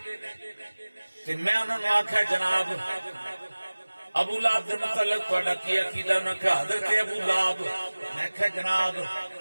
تے میں انہوں نے آکھا جناب ابو لہب دے متعلق تہاڈا کی عقیدہ انہوں نے کہا حضرت ابو لہب میں کہا جناب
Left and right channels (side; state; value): both; inverted; correlation -1.00